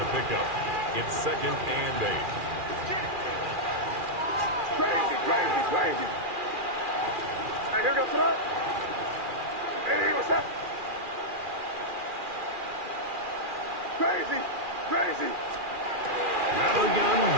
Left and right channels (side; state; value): left; late; 2.4 ms